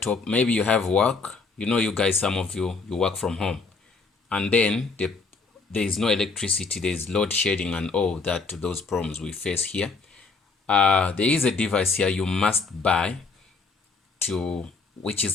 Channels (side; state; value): right; quieter; 4.4 dB